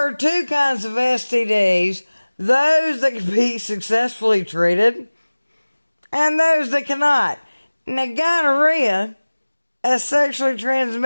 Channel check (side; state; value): both; inverted; correlation -1.00